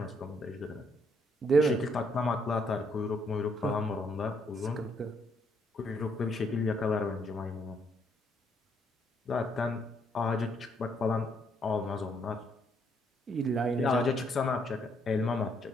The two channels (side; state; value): both; normal; correlation 0.72